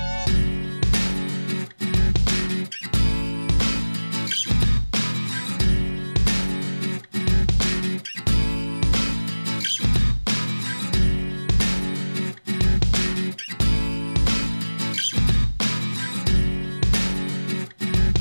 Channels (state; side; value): inverted; both; correlation -1.00